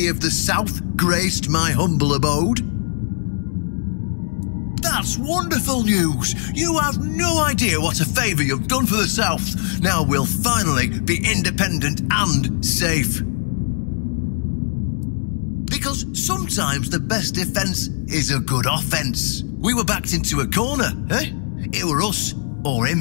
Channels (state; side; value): silent; right; 65 dB below the other